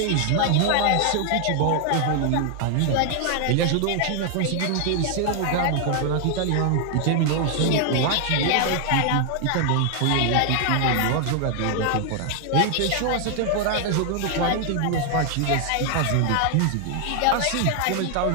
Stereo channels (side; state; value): both; different; correlation 0.00